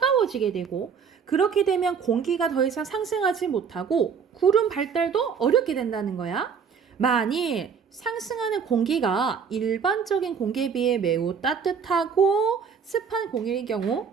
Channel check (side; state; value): left; quieter; 6.5 dB